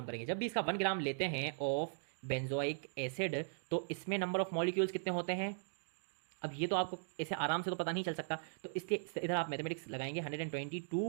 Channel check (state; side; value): silent; left; digital silence